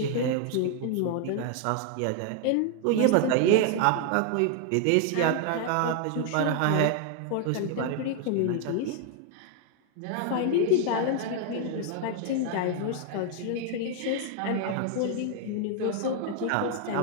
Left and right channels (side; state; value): both; different; correlation 0.00